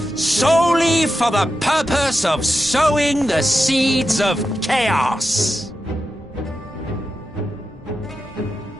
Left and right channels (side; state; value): both; normal; correlation 0.89